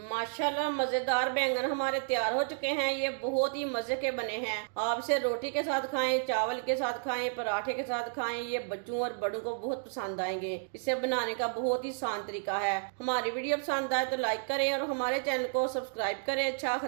मजेदार बैंगन हमारे तैयार हो चुके हैं। ये बहुत ही मजे के बने हैं। आप इसे रोटी के साथ खाएं, चावल के साथ खाएं, पराठे के साथ खाएं। ये बच्चों और बड़ों को बहुत पसंद आएंगे। इसे बनाने का बहुत ही आसान तरीका है। हमारी वीडियो पसंद आए तो लाइक करें और हमारे चैनल को सब्सक्राइब करें। अच्छा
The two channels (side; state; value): left; silent; digital silence